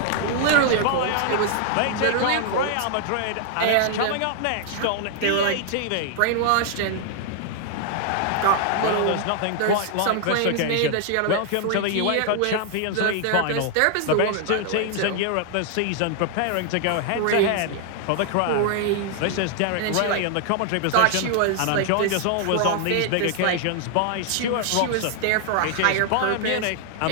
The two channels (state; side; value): different; both; correlation 0.00